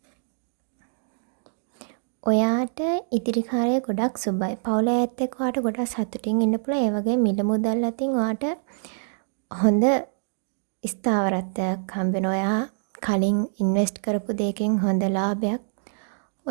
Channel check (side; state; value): left; silent; digital silence